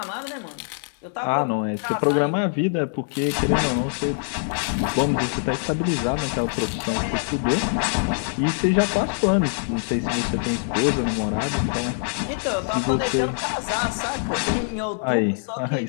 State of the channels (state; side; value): silent; right; digital silence